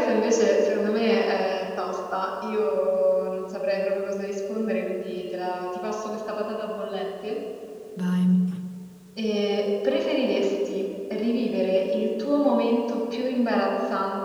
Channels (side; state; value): both; identical; correlation 1.00